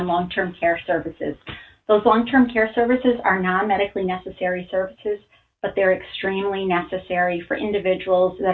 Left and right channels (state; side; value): identical; both; correlation 1.00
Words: long-term care services. Those long-term care services are non-medically necessary services, but they're extremely necessary for individuals